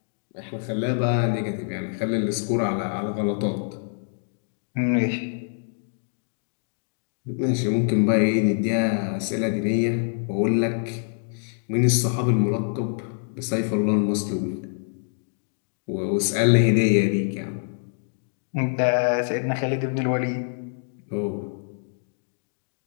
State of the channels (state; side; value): silent; right; digital silence